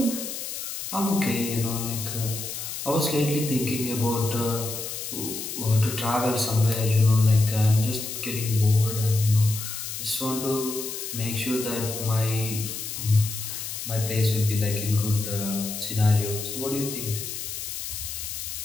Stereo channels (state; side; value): noise; left; hiss, 6 dB below the sound